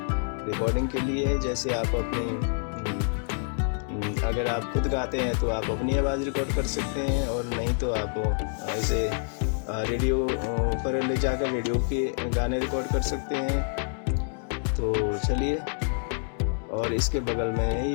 रिकॉर्डिंग के लिए है। जैसे आप अपनी अगर आप खुद गाते हैं तो आप अपनी आवाज़ रिकॉर्ड कर सकते हैं, और नहीं तो आप ऐसे रेडियो पर ले जाकर रेडियो के गाने रिकॉर्ड कर सकते हैं। तो चलिए, और इसके बगल में है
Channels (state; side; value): silent; right; 60 dB below the other